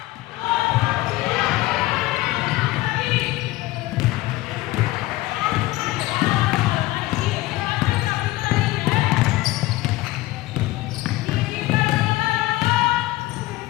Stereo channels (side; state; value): right; quieter; 18.4 dB